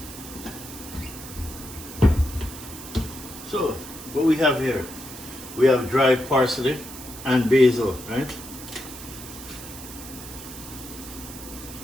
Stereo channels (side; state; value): right; noise; hiss, 13 dB below the sound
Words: So, what we have here, we have dried parsley and basil, right?